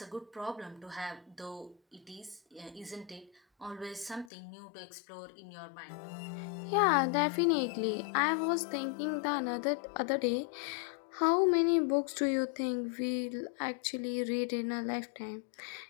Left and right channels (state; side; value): drops out; right; at 4.3 s